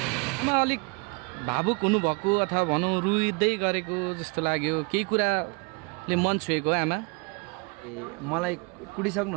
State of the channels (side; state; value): left; quieter; 31.5 dB